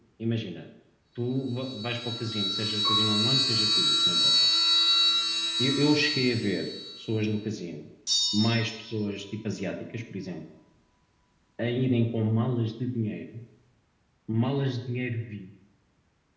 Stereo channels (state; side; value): identical; both; correlation 1.00